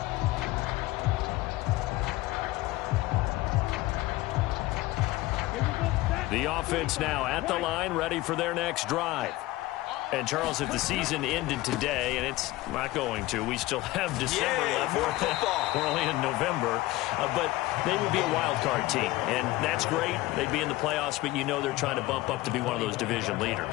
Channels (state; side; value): quieter; right; 18.3 dB